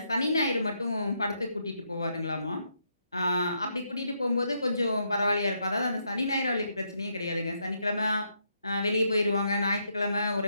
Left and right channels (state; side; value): inverted; both; correlation -0.78